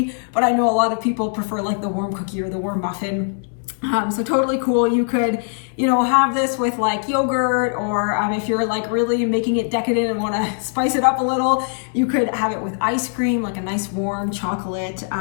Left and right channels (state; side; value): silent; right; 57 dB below the other